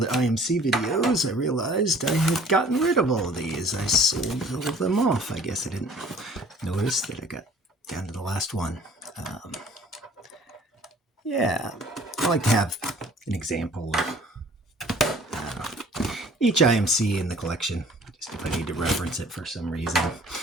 IMC videos, I realized I had gotten rid of all of these. I sold all of them off. I guess I didn't notice that I got down to the last one. Yeah, I like to have an example of each IMC in the collection, just if I need to reference it for some reason.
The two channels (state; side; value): normal; both; correlation 0.52